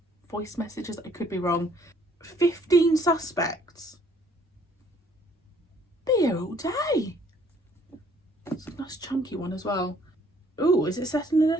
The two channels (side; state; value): both; normal; correlation 0.62